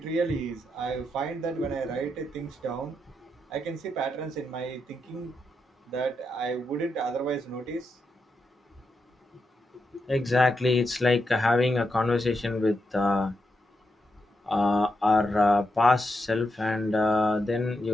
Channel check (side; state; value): both; normal; correlation 0.84